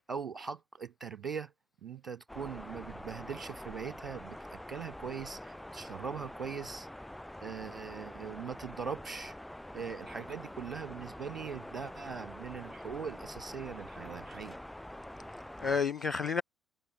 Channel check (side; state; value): both; normal; correlation 0.65